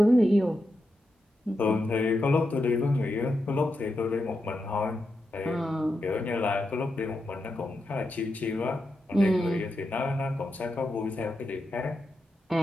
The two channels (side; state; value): both; normal; correlation 0.87